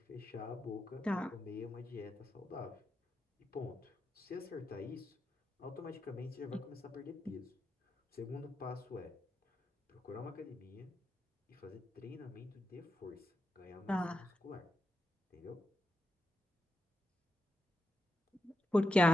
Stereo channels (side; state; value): both; normal; correlation 0.86